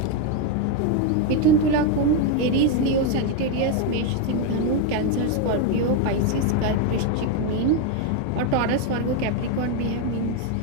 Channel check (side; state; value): both; different; correlation 0.02